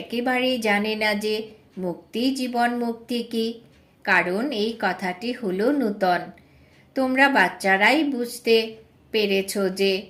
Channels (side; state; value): both; identical; correlation 1.00